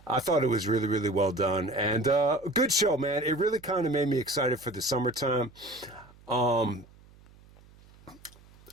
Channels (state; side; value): noise; right; hum, 25 dB below the sound